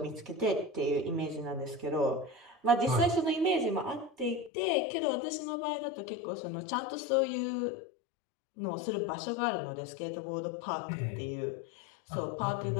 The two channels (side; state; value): right; drops out; at 4.5 s